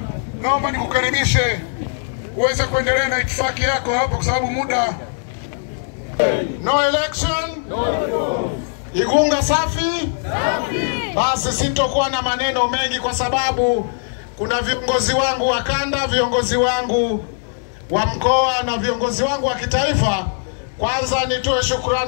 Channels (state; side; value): silent; right; digital silence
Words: naomba nikukaribishe uweze kuendelea na itifaki yako hapo kwa sababu muda. No election, no reform. Igunga safi? Safi. Basi sitokuwa na maneno mengi kwa sababu kuna viongozi wangu wa kanda, viongozi wangu wa mkoa na viongozi wangu wa kitaifa. Kwanza nitoe